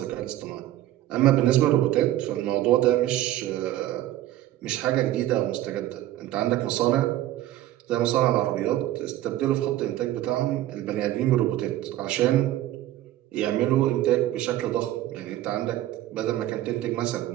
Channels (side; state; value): left; quieter; 14.1 dB